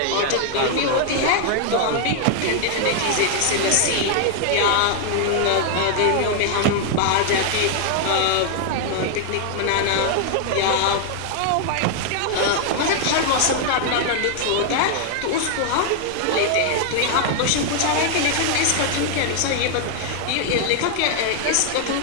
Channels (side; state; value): both; different; correlation 0.00